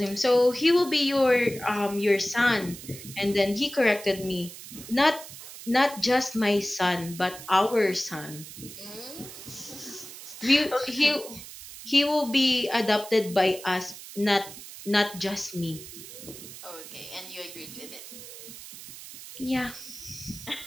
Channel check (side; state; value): right; noise; hiss, 14 dB below the sound